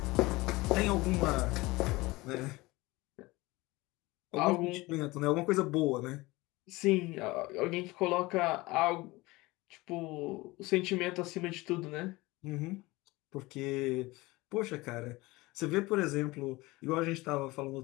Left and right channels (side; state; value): right; quieter; 21.4 dB